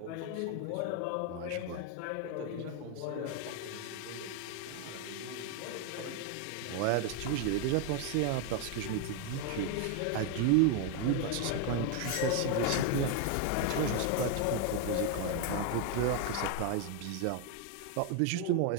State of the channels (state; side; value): different; both; correlation 0.01